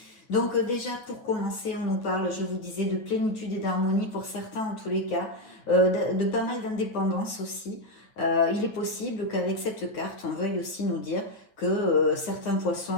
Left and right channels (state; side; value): late; right; 9.4 ms